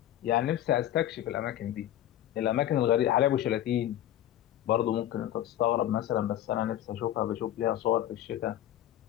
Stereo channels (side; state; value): right; quieter; 12.5 dB